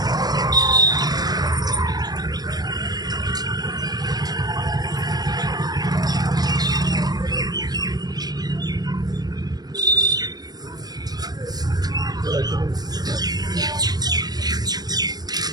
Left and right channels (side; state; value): left; late; 0.19 ms